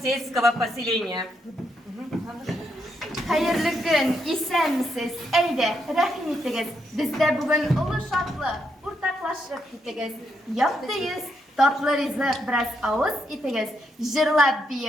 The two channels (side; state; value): both; normal; correlation 0.79